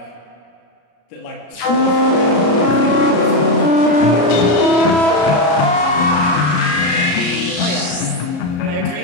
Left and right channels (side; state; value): right; late; 33 ms